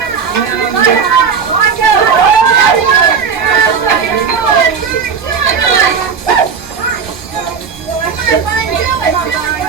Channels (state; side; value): quieter; left; 6.2 dB